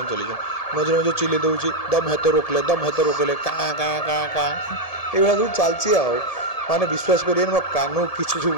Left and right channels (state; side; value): late; right; 1.7 ms